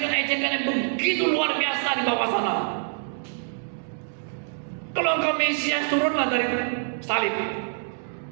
yang begitu luar biasa di bawah sana. Kalau engkau Mesias, turunlah dari salib.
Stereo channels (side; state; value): left; silent; digital silence